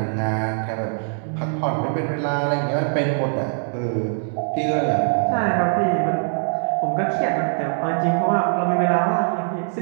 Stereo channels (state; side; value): silent; left; 64 dB below the other